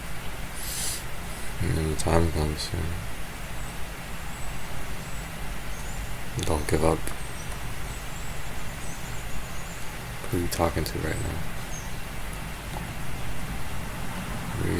And then the time comes soon. Don't give up. Who are you talking to right now? Who are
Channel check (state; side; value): identical; both; correlation 1.00